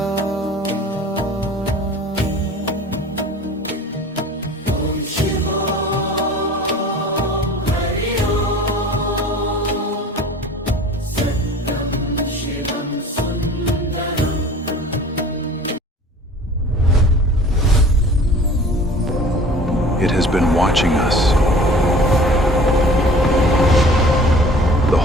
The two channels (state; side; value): normal; both; correlation 0.45